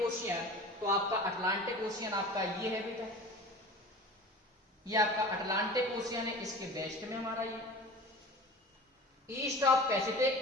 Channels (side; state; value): both; normal; correlation 0.38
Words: ओशियन, तो आपका अटलांटिक ओशियन आपका ये है बेटा, ये आपका अटलांटिक ओशियन है, इसके वेस्ट में हमारा ये। ईस्ट ऑफ